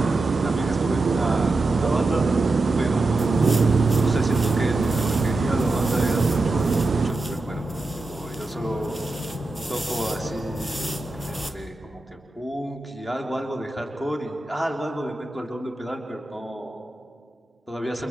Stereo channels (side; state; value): left; quieter; 3.1 dB